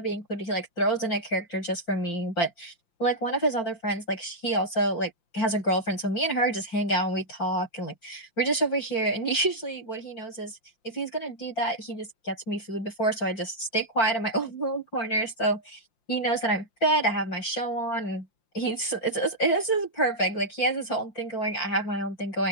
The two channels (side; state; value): right; late; 5.8 ms